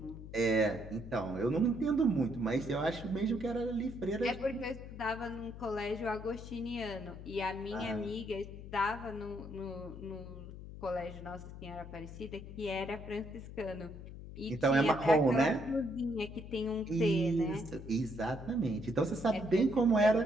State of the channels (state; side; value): noise; left; hum, 12 dB below the sound